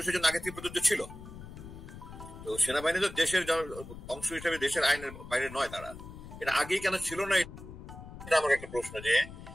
জন্য আগে থেকে প্রযোজ্য ছিল। তো সেনাবাহিনী তো দেশের অংশ হিসেবে দেশের আইনের বাইরে নয়, তারা এটা আগেই কেন ছিল না, এটা আমার একটা প্রশ্ন। যে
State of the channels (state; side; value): noise; left; rumble, 14 dB below the sound